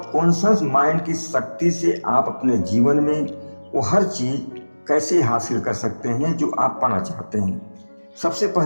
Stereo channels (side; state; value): both; inverted; correlation -1.00